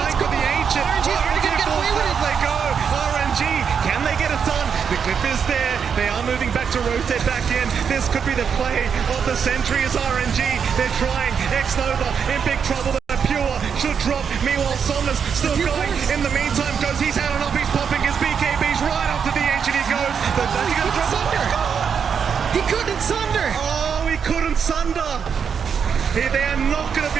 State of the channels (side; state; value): left; quieter; 6.9 dB